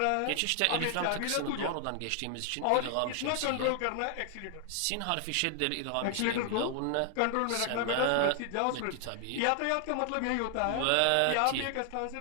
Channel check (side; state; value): both; different; correlation 0.00